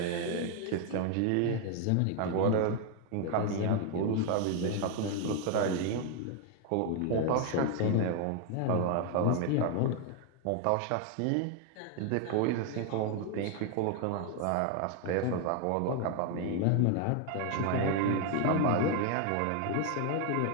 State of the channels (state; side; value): different; both; correlation 0.00